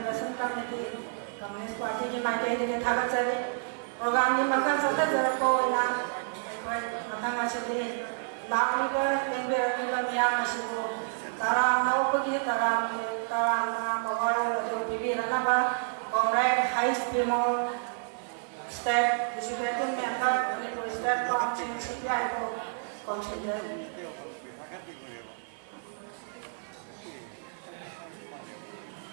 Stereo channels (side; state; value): left; silent; 58 dB below the other